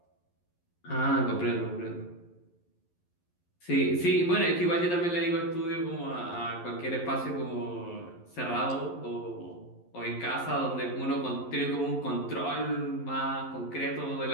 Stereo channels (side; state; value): right; late; 11 ms